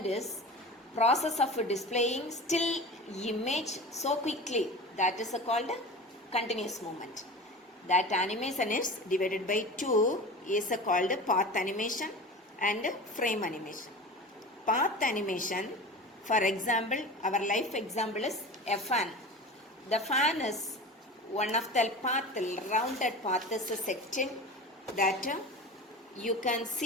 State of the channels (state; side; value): normal; both; correlation 0.33